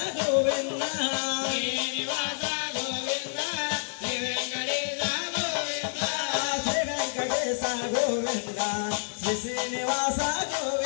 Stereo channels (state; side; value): silent; right; 59 dB below the other